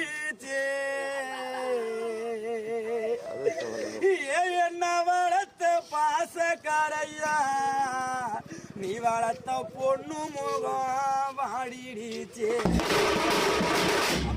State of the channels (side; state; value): both; identical; correlation 1.00